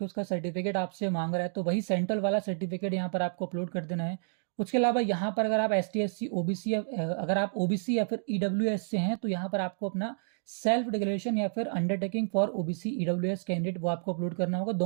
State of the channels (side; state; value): left; silent; digital silence